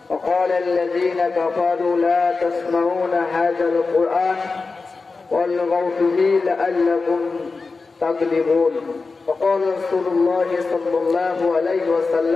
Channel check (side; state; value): right; quieter; 4.1 dB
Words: وقال الذين كفروا لا تسمعون هذا القرآن والغوا فيه لعلكم تغلبون وقال رسول الله صلى الله عليه